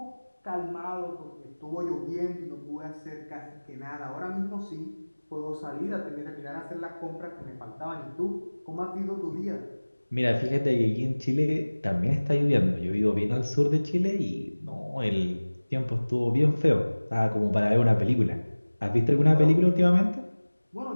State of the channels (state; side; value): inverted; both; correlation -1.00